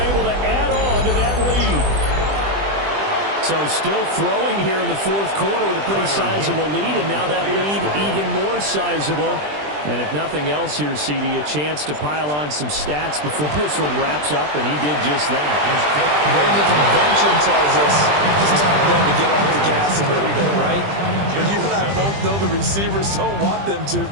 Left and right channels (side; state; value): left; late; 20 ms